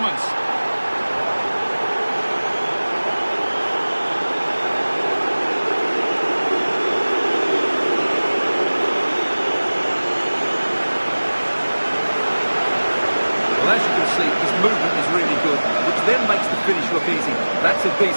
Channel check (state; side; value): inverted; both; correlation -1.00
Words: Well, as you can see, his movement is really good, which then makes the finish look easy. That's a